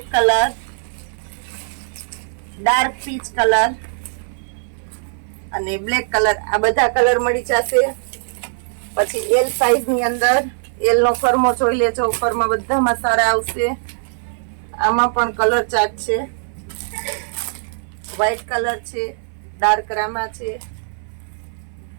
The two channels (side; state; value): left; silent; 57 dB below the other